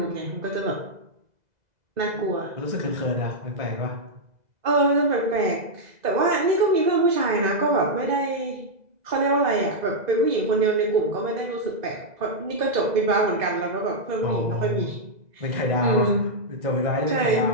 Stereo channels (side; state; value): left; late; 2.0 ms